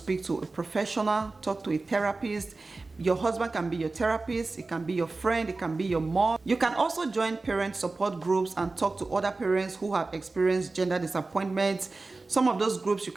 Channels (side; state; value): left; quieter; 3.5 dB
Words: to a professional, talk to a therapist. Your husband can be your therapist, it can be your friend, it can be your mom. You can also join parent support groups and talk to other parents who have experienced gender disappointment. Some of those groups, you